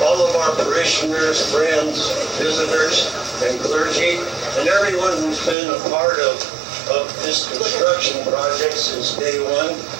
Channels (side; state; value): left; drops out; at 5.6 s